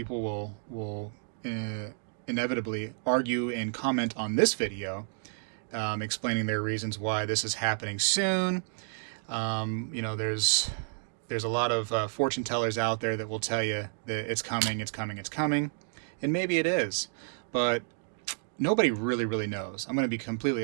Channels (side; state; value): left; silent; digital silence